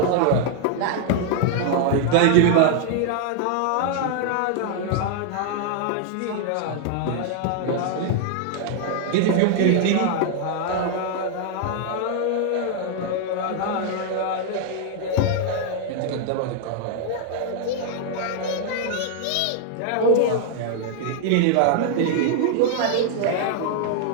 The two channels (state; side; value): different; both; correlation 0.00